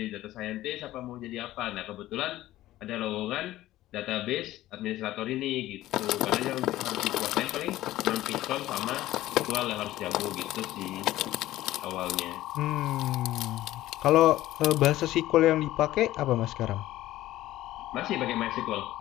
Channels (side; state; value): right; quieter; 15.2 dB